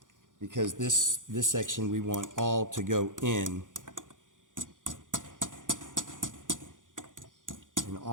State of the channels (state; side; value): late; left; 0.88 ms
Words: because this section we want all to go in. And